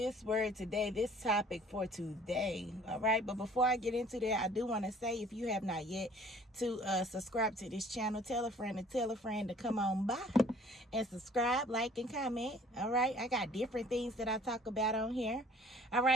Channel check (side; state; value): both; normal; correlation 0.53